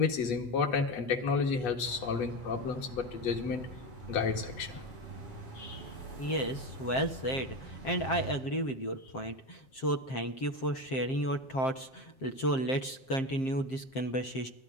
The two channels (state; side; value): late; right; 7.6 ms